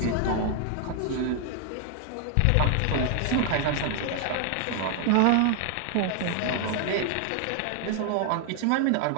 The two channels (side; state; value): both; different; correlation 0.00